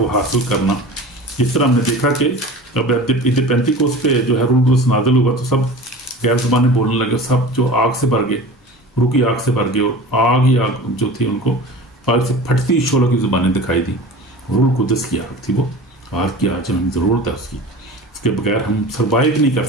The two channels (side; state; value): both; normal; correlation 0.36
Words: हासिल करना। जिस तरह हमने देखा कि अब ईद पेंतीकोस्त पे जो है रूह कुदस नाज़िल हुआ तो सब गैर ज़बानें बोलने लगे, सब जो आग से भर गए, रूह की आग से भर गए, और आग ही आग जो थी उनको आग से फटती शोलों की ज़ुबानें दिखाई दी। रूह कुदस की आग थी वो, आग की आज हमें ज़रूरत है उसकी, उसके बगैर हम सर्वाइव नहीं कर